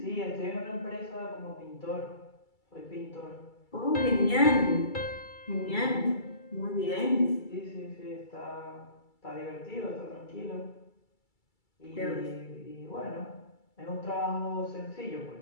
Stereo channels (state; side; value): late; right; 2.3 ms